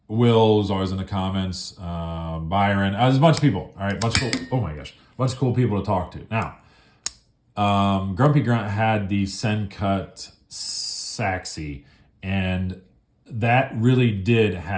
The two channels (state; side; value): identical; both; correlation 1.00